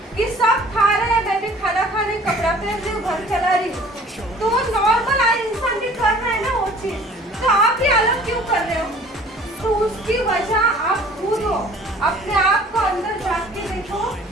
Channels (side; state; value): both; normal; correlation 0.50